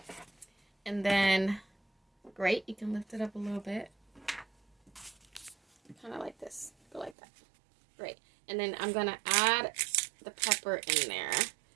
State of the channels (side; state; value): left; drops out; at 7.2 s